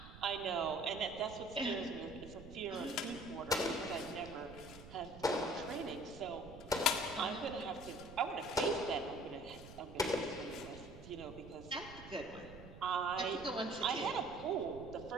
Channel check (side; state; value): right; noise; rumble, 15 dB below the sound